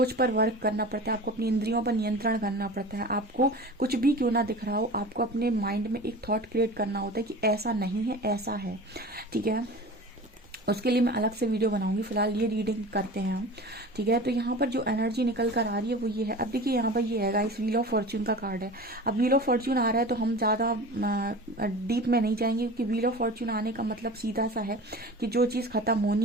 पर वर्क करना पड़ता है, आपको अपनी इंद्रियों पर नियंत्रण करना पड़ता है। आपको कुछ भी क्यों ना दिख रहा हो, आपको अपने माइंड में एक थॉट क्रिएट करना होता है कि ऐसा नहीं है, ऐसा है। ठीक है, उसके लिए मैं अलग से वीडियो बनाऊंगी। फिलहाल ये रीडिंग करते हैं हम, ठीक है। तो यहाँ पर जो एनर्जी निकल कर आ रही है वो ये है। अब देखिए यहाँ पर ये है गाइस, व्हील ऑफ फॉर्च्यून का कार्ड है। अब व्हील ऑफ फॉर्च्यून आ रहा है तो हम ज़्यादा डीप में नहीं जाएंगे, क्योंकि व्हील ऑफ फॉर्च्यून आने का मतलब सीधा सा है कि जो चीज़ खत्म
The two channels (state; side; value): normal; both; correlation 0.36